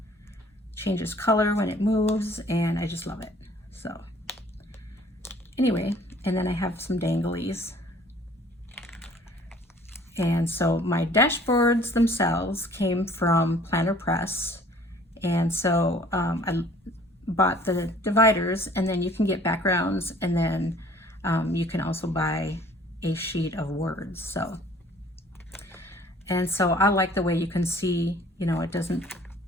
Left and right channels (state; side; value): normal; both; correlation 0.54